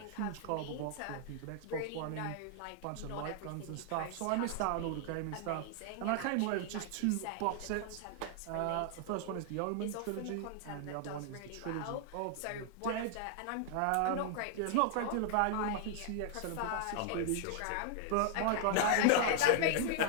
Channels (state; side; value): different; both; correlation 0.00